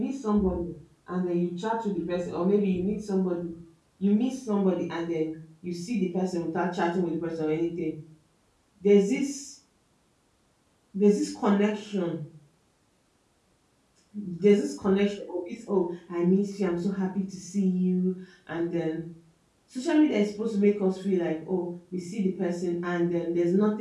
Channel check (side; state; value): both; identical; correlation 1.00